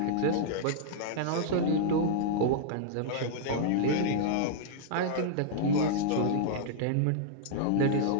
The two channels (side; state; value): both; different; correlation -0.02